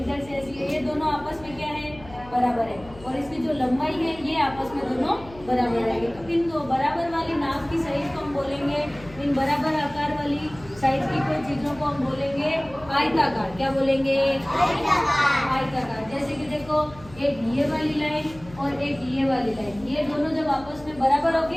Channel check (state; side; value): noise; left; hum, 19 dB below the sound